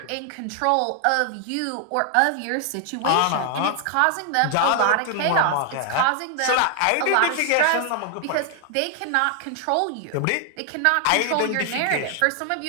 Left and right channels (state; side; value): different; both; correlation 0.00